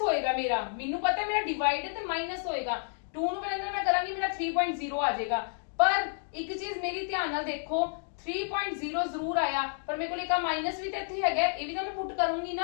होएगा, मेनू पता है मेरा डिवाइड है तो माइनस होएगा। 2 ਨੂੰ ਪਹਿਲਾਂ ਮੈਂ ਕਰਾਂਗੀ ਮੇਰਾ 3.0 ਆ ਜਾਏਗਾ, ਪਰ ਇੱਕ ਚੀਜ਼ ਮੇਰੀ ਧਿਆਨ ਨਾਲ ਦੇਖੋ 3.0 ਜ਼ਰੂਰ ਆਇਆ ਪਰ ਮੇਰੇ ਕੋਲ ਇੱਕ ਮਾਈਨਸ ਵੀ ਤਾਂ ਇੱਥੇ ਹੈਗਾ, ਇਹ ਵੀ ਤਾਂ ਮੈਂ ਪੁੱਟ ਕਰੂੰਗੀ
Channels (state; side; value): silent; right; digital silence